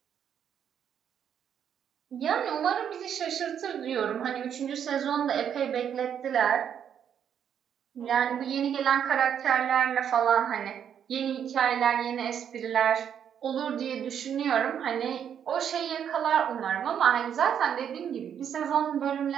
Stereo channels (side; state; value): left; quieter; 8.6 dB